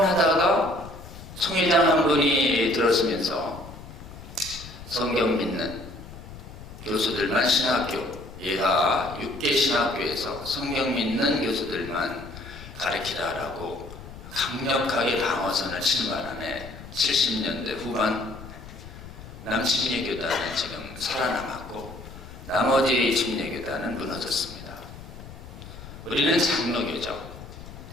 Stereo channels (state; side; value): noise; left; rumble, 15 dB below the sound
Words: 총회장 한 분이 들어서면서 성경 믿는 교수들만 신학교, 예하 6개 신학교에서 성경 믿는 교수들만 가르치라라고 강력하게 방어선을 치는 바람에 70년대 후반 남침례교단은 지금 살아남았고 나머지 침례교단은 무너졌습니다. 우리는 장로교죠.